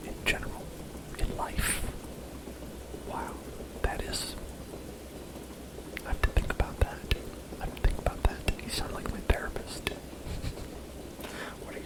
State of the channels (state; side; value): identical; both; correlation 1.00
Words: in general? In life? Wow, that is... I have to think about that. I have to think about that. You sound like my therapist.